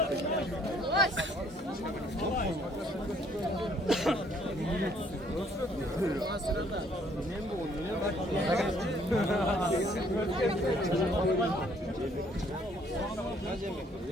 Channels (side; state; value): both; normal; correlation 0.63